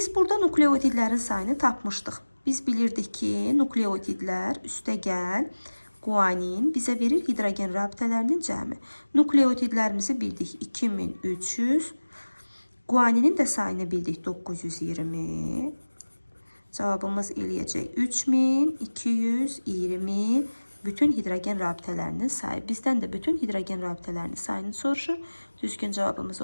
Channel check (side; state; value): both; inverted; correlation -1.00